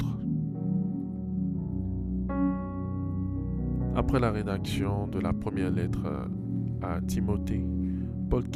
Après la rédaction de la première lettre à Timothée, Paul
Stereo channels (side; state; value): both; identical; correlation 1.00